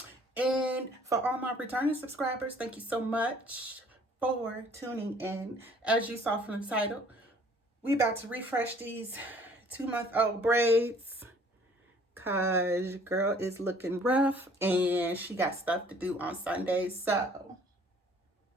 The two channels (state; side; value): normal; both; correlation 0.56